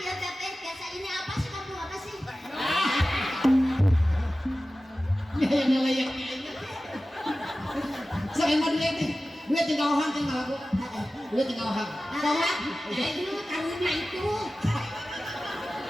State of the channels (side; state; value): both; normal; correlation 0.95